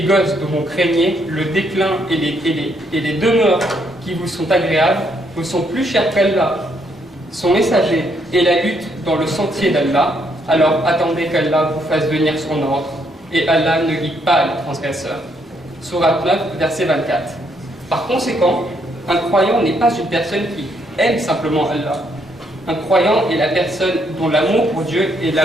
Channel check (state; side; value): normal; both; correlation 0.73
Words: dont vous craignez, le déclin et les demeures qui vous sont agréables, vous sont plus chers qu'Allah, son messager et la lutte dans le sentier d'Allah, alors attendez qu'Allah vous fasse venir son ordre, et Allah ne guide pas les transgresseurs. » Sourate 9, verset 24. Par conséquent, un croyant n'est pas une personne qui aime simplement Allah. Un croyant est la personne dont l'amour pour Dieu est